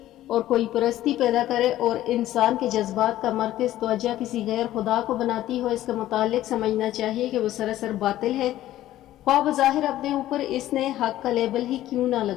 اور کوئی پرستی پیدا کرے اور انسان کے جذبات کا مرکز توجہ کسی غیر خدا کو بناتی ہو، اس کا متعلق سمجھنا چاہیے کہ وہ سراسر باطل ہے، خواہ بظاہر اپنے اوپر اس نے حق کا لیبل ہی کیوں نہ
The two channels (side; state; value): right; quieter; 14.0 dB